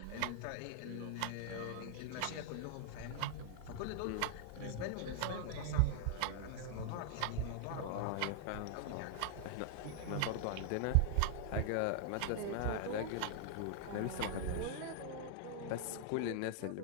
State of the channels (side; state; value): both; different; correlation 0.00